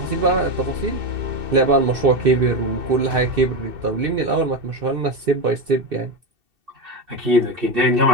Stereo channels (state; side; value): late; left; 2.7 ms